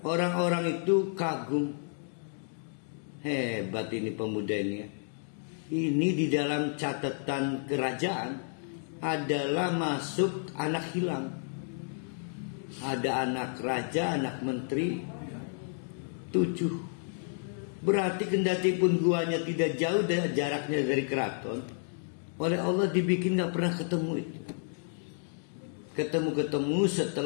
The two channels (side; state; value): right; silent; digital silence